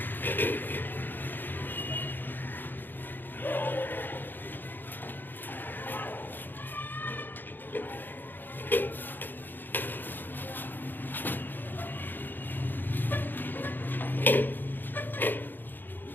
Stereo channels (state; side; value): late; right; 0.092 ms